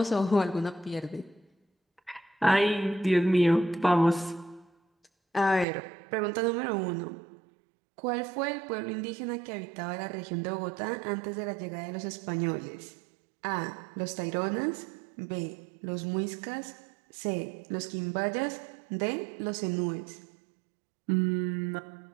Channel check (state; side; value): drops out; left; at 5.7 s